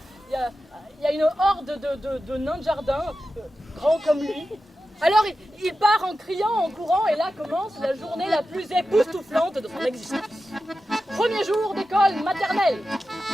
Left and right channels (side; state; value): both; normal; correlation 0.92